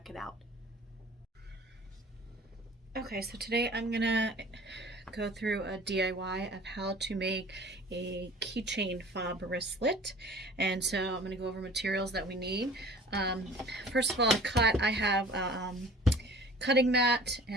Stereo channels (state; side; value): normal; both; correlation 0.46